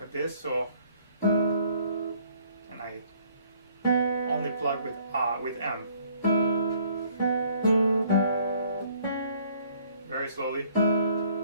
at this. So, and I only plug with M. Very slowly.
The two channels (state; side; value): inverted; both; correlation -0.61